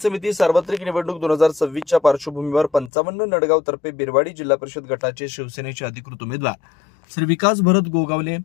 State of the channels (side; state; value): right; drops out; at 2.9 s